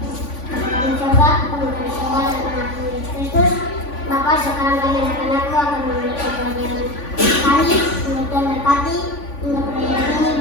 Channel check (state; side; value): late; right; 3.5 ms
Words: Bapak, sekarang kami anak-anakku akan memulai pelajaran kami. Untuk Tuhan berkati untuk pelajaran ini